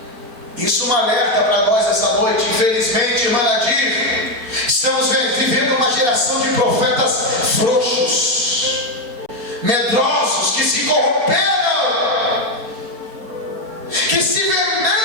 Isso é um alerta para nós essa noite. Infelizmente, irmã Nadir, estamos vivendo uma geração de profetas frouxos, medrosos, que se corromperam, que se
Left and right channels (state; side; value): late; left; 4.2 ms